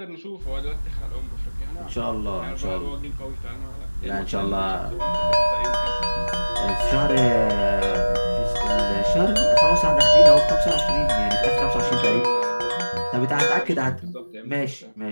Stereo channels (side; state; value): both; inverted; correlation -1.00